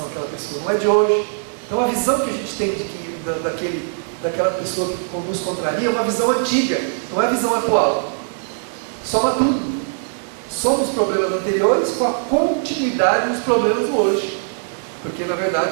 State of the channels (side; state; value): left; silent; digital silence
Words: àquela pessoa, não é de hoje. Então a visão que a gente tem daquela pessoa que nos contraria é uma visão antiga, não é a visão atual. Soma tudo. Soma os problemas anteriores com a continuidade dos problemas do hoje. Porque na